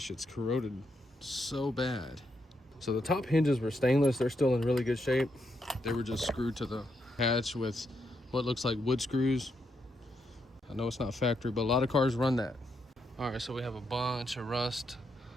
It's corroded so bad. So the top hinges were stainless. They're still in really good shape. They were just screwed to the hatch with what looks like wood screws. I know it's not factory, but a lot of cars run that. All right, so we have a bunch of rust.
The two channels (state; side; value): normal; both; correlation 0.80